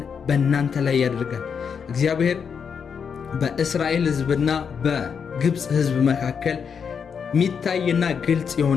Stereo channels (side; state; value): right; quieter; 6.6 dB